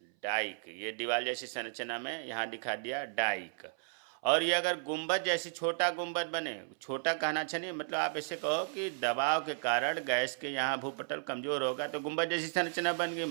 डाइक, ये दीवार जैसी संरचना में यहाँ दिखा दिया डाइक। और ये अगर गुंबद जैसी छोटा गुंबद बने, छोटा कहना अच्छा नहीं, मतलब आप ऐसे कहो कि दबाव के कारण गैस के यहाँ भूपटल कमजोर होगा तो गुंबद जैसी संरचना बन गई,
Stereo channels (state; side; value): silent; left; 55 dB below the other